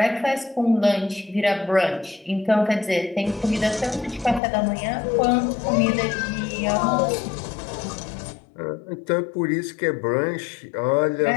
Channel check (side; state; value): right; drops out; at 4.4 s